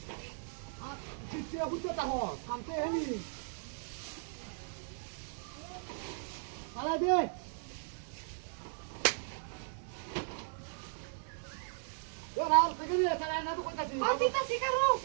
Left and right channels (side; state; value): left; silent; digital silence